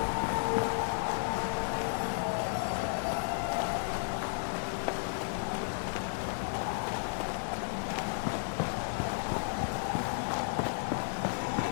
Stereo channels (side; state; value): right; silent; digital silence